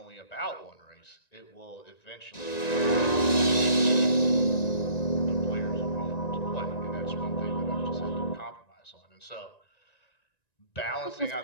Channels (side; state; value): right; late; 1.9 ms